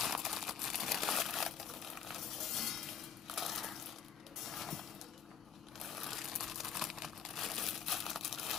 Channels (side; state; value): right; quieter; 7.6 dB